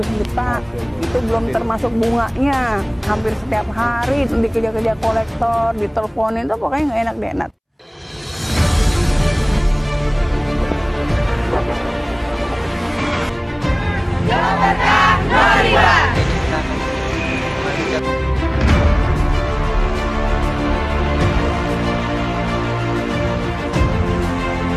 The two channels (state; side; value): identical; both; correlation 1.00